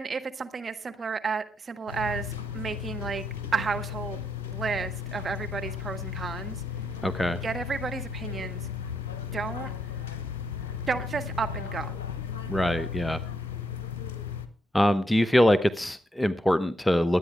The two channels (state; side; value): normal; both; correlation 0.77